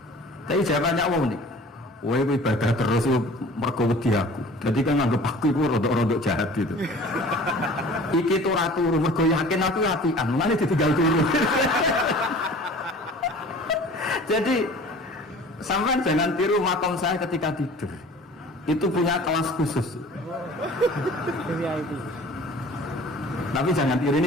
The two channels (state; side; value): normal; both; correlation 0.45